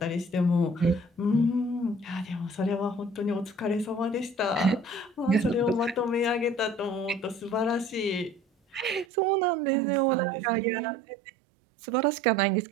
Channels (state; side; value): drops out; left; at 9.1 s